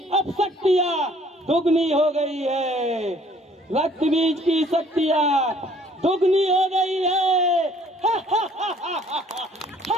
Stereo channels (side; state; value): both; normal; correlation 0.58